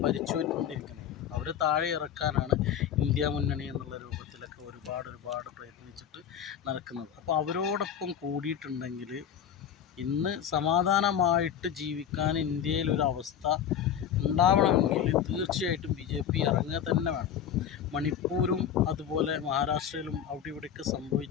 ഭരിച്ചുകൊണ്ടിരിക്കുന്നത്. അവർ താഴെ ഇറക്കാനാണ് ഇന്ത്യ മുന്നണി എന്നുള്ള രൂപത്തിലൊക്കെ ഒരുപാട് പ്രയത്നിച്ചിട്ട് നടക്കുന്നത്. അപ്പോൾ അവരോടൊപ്പം കൂടിയിട്ടുണ്ടെങ്കിൽ ഇന്ന് സമാധാനമായിട്ട് ജീവിക്കാൻ ഇന്ത്യയിലൊരവസ്ഥ ഉണ്ടാവണമെങ്കിൽ തീർച്ചയായിട്ടും ബി ജെ പി ഇറങ്ങുക തന്നെ വേണം. മണിപ്പൂരും അതുപോലെ മഹാരാഷ്ട്രയിലും അവിടെ ഇവിടെയൊക്കെ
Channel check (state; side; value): quieter; right; 9.0 dB